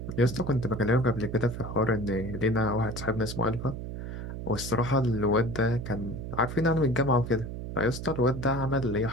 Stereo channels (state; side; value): noise; right; hum, 7 dB below the sound